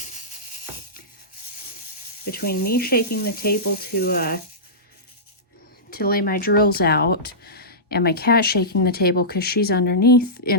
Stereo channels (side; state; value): both; normal; correlation -0.17